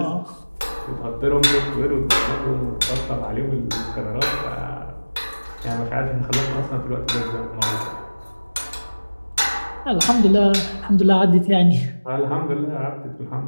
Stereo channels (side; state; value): both; inverted; correlation -1.00